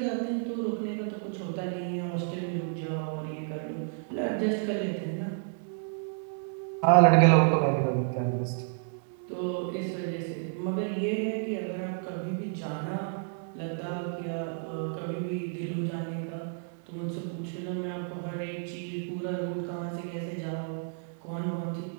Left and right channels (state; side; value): silent; left; digital silence